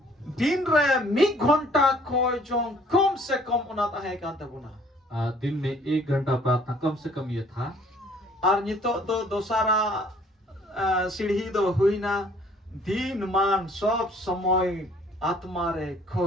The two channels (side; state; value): both; normal; correlation 0.58